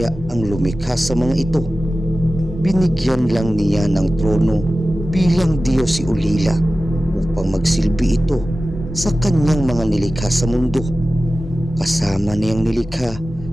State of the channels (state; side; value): normal; both; correlation 0.95